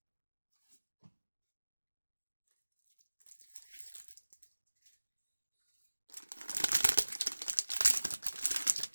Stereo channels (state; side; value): inverted; both; correlation -1.00